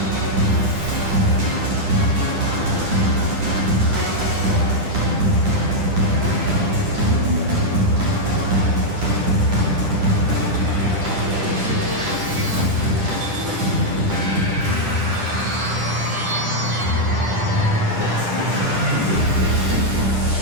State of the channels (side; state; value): left; late; 10 ms